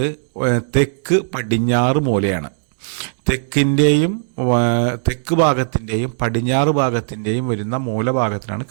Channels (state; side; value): silent; left; digital silence